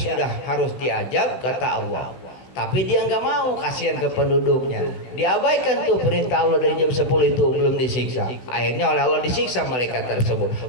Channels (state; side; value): late; right; 16 ms